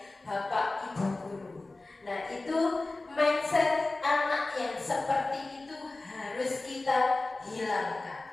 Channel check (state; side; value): quieter; right; 3.1 dB